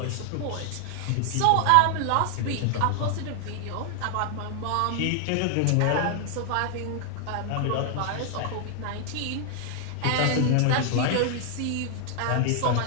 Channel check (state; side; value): different; both; correlation 0.00